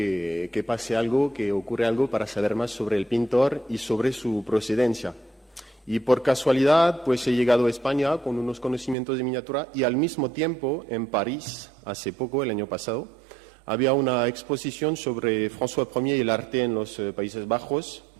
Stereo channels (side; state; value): left; drops out; at 9.0 s